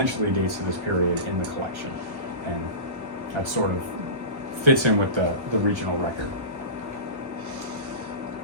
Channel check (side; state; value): left; late; 1.1 ms